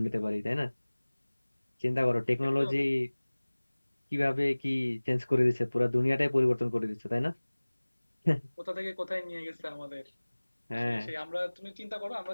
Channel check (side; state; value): both; inverted; correlation -1.00